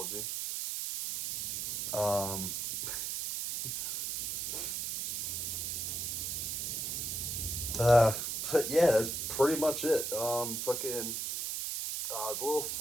Um, uh, but yeah, that's pretty much it. Fucking the little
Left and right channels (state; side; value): noise; right; hiss, 2 dB below the sound